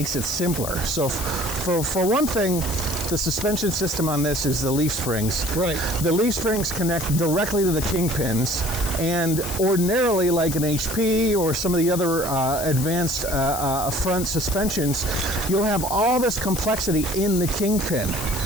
it simpler. So for one thing, the suspension system on this is the leaf springs. Right. The leaf springs connect directly to the kingpins, and ordinarily, like an HP or some of the other advanced front suspensions, you'll have all this complexity in the kingpin,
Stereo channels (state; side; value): noise; left; hiss, 7 dB below the sound